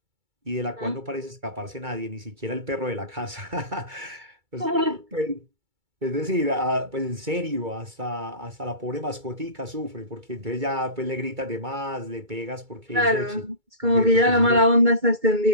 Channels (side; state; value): left; late; 2.3 ms